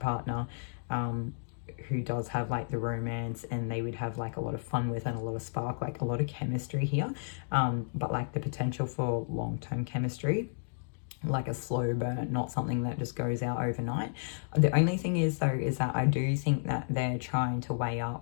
who does have like the romance, and they would have like a lot of fun with and a lot of spark, like a lot of chemistry here, but like the potential for long-term chemistry, like a slow burn, not something that just goes out overnight. The only thing is though, is that I do think that they're trying to weigh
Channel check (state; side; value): silent; right; digital silence